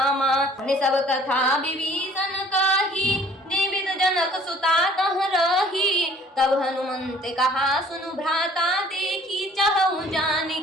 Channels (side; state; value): both; normal; correlation 0.54